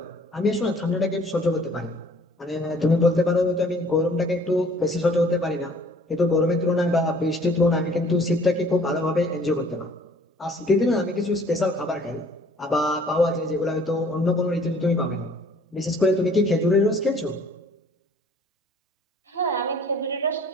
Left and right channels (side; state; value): both; normal; correlation 0.55